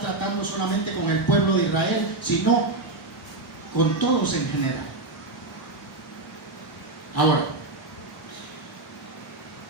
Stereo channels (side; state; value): left; quieter; 3.1 dB